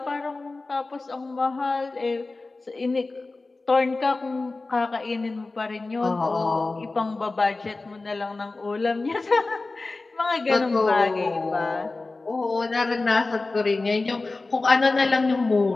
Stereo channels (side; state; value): right; quieter; 3.4 dB